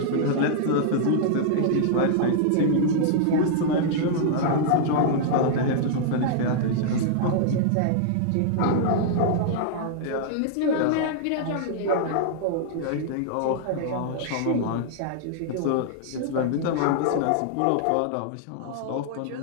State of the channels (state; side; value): different; both; correlation -0.01